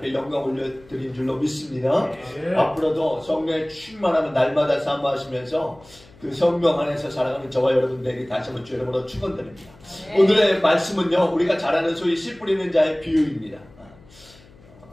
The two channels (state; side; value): noise; left; hum, 25 dB below the sound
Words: 영광 올려드린 줄로 믿습니다. 앞으로도 성령의 충만함을 날마다 사모하시면서 그 성령 안에서 살아가는 저와 여러분들에게 다시 한번 주 여러분으로 축원드립니다. 오늘의 말씀은요, 우리가 잘 아는 소위 씨 뿌리는 자의 비유입니다.